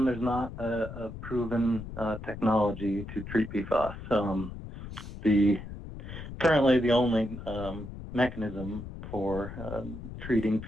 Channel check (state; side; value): noise; left; rumble, 11 dB below the sound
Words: there's not a proven technology to treat PFAS. Currently the only mechanism for treating